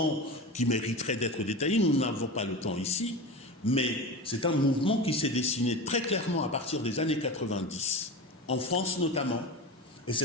qui mériterait d'être détaillé, nous n'avons pas le temps ici, mais c'est un mouvement qui s'est dessiné très clairement à partir des années 90, en France notamment, et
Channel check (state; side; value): normal; both; correlation 0.28